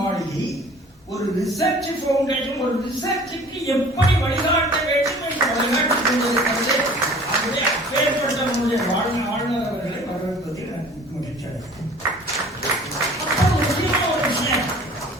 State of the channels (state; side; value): normal; both; correlation 0.48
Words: ஒரு ரிசர்ச் ஃபவுண்டேஷன் ஒரு ரிசர்ச்சுக்கு எப்படி வழிகாட்ட வேண்டும் என்று